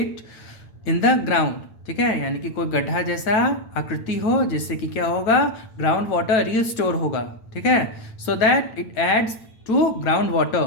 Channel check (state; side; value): late; right; 9.0 ms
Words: in the ground, ठीक है, यानी कि कोई गड्ढा जैसा आकृति हो जिससे कि क्या होगा, ग्राउंड वाटर रिस्टोर होगा, ठीक है, so that it adds to ground